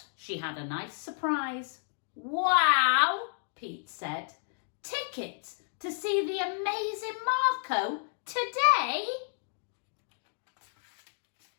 she had a nice surprise. Wow, Pete said. Tickets to see the amazing Marco today?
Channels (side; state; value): right; silent; digital silence